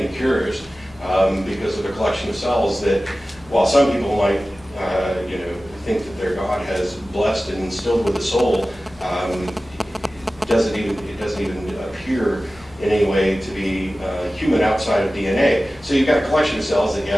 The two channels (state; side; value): normal; both; correlation 0.96